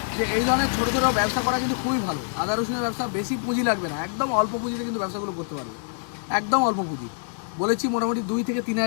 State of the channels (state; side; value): silent; right; digital silence